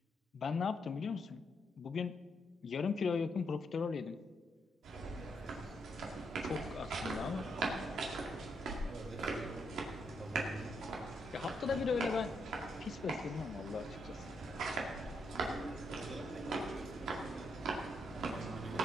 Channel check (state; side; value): normal; both; correlation 0.78